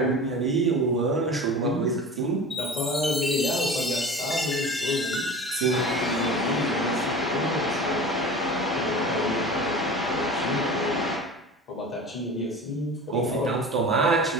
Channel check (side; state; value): both; normal; correlation 0.36